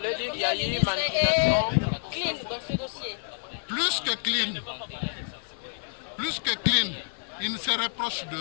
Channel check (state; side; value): silent; right; digital silence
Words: dire qu'il y a eu une manipulation clean dans ce dossier? Plus que clean, il ne se reproche